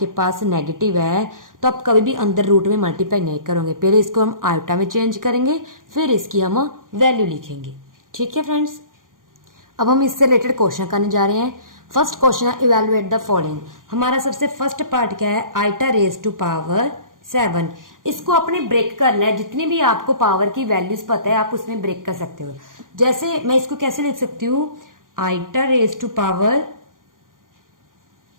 पास नेगेटिव है तो आप कभी भी अंदर रूट में मल्टीप्लाई नहीं करोगे, पहले इसको हम आयोटा में चेंज करेंगे फिर इसकी हम वैल्यू लिखेंगे। ठीक है फ्रेंड्स, अब हम इससे रिलेटेड क्वेश्चन करने जा रहे हैं। फर्स्ट क्वेश्चन है इवेलुएट द फॉलोइंग। हमारा सबसे फर्स्ट पार्ट क्या है, आइटा रेज टू पावर 7। इसको अपने ब्रेक करना है, जितनी भी आपको पावर की वैल्यूज पता है आप उसमें ब्रेक कर सकते हो। जैसे मैं इसको कैसे लिख सकती हूँ, iota raise to power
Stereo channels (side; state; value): left; late; 0.90 ms